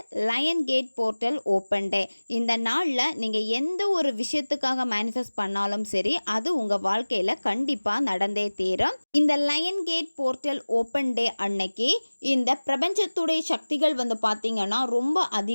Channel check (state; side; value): inverted; both; correlation -1.00